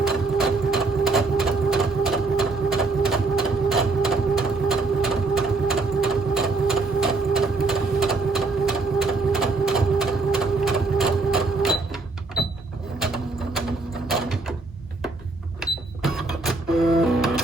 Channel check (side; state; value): left; quieter; 3.7 dB